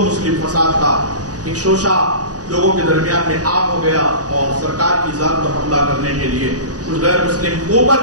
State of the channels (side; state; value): left; late; 0.68 ms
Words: مسلم فساد کا ایک شوشہ لوگوں کے درمیان میں عام ہو گیا اور سرکار کی ذات پر حملہ کرنے کے لیے کچھ غیر مسلم